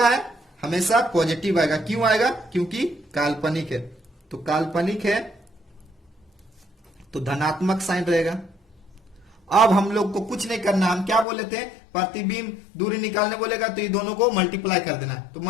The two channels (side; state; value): right; drops out; at 11.2 s